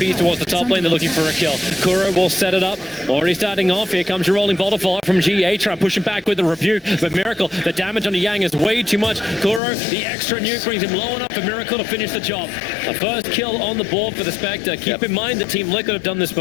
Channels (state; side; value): drops out; right; at 9.6 s